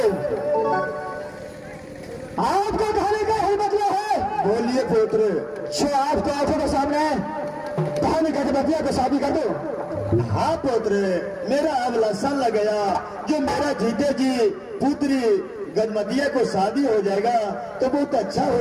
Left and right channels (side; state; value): both; identical; correlation 1.00